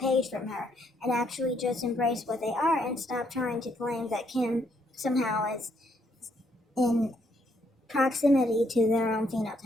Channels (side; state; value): both; normal; correlation 0.72